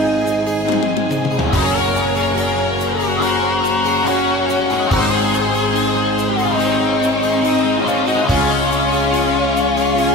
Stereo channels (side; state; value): both; normal; correlation 0.42